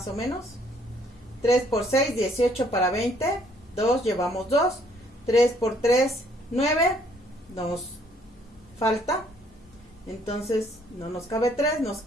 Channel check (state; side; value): normal; both; correlation 0.64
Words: o menos. 3 por 6, 18 para 20. 2, llevamos 2. 3 por 3, 9. Nos falta. Entonces no nos cabe 3, nos